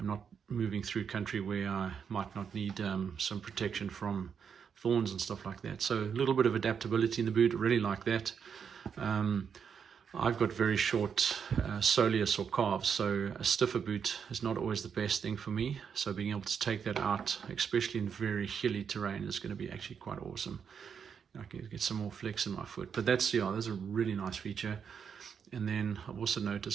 not moving through country where I might not need some protection from thorns and stuff like that. So a little bit of adaptability in the boot, really like that. I've got very short soleus or calves, so a stiffer boot is not always the best thing for me. So being able to take that out, especially in very hilly terrain, is going to be actually quite awesome. I can get some more flex in my foot. But that's, yeah, that's a really nice feature. And then I've also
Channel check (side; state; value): left; quieter; 7.0 dB